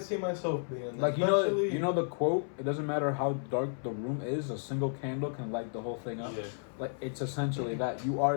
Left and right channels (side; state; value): right; silent; 56 dB below the other